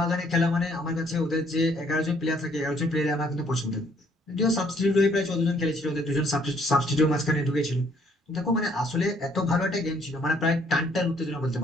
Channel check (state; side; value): normal; both; correlation 0.64